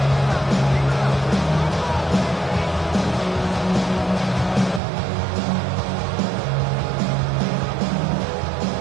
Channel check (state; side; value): drops out; left; at 4.8 s